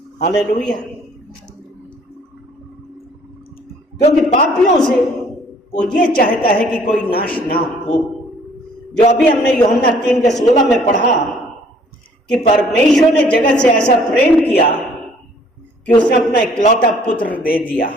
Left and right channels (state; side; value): normal; both; correlation 0.58